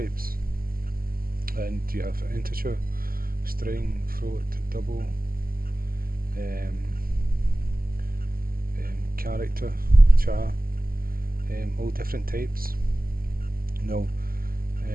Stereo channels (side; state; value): left; late; 0.42 ms